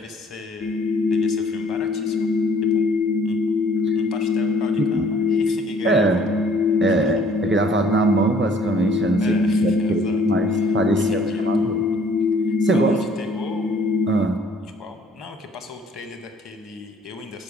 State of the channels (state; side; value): normal; both; correlation 0.58